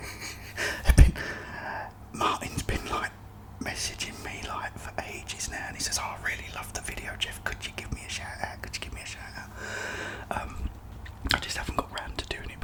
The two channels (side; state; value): both; identical; correlation 1.00